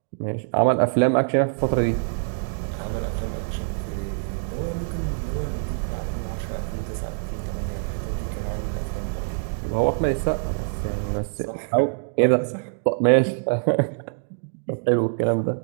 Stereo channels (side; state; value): left; silent; digital silence